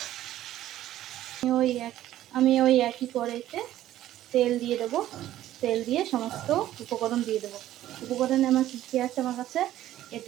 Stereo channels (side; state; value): left; quieter; 13.4 dB